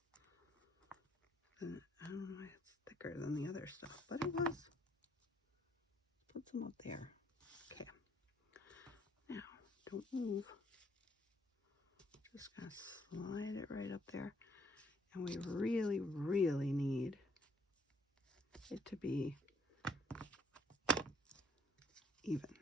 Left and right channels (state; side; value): normal; both; correlation 0.65